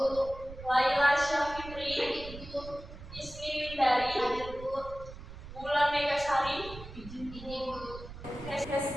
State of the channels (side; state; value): right; noise; rumble, 13 dB below the sound